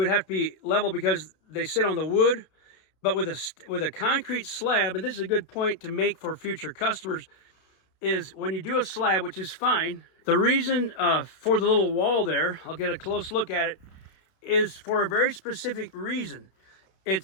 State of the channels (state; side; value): late; right; 32 ms